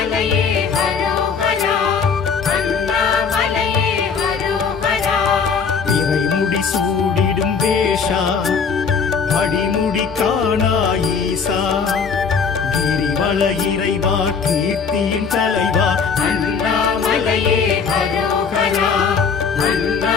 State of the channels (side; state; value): right; quieter; 5.8 dB